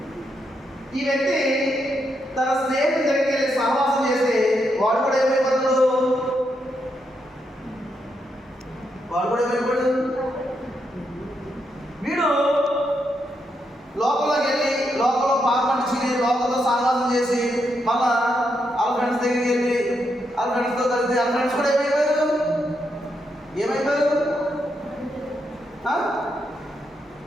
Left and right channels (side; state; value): both; normal; correlation 0.81